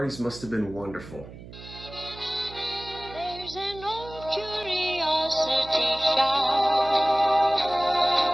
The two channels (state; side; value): noise; right; hum, 16 dB below the sound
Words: must have been wonderful. There's an old curiosity shop.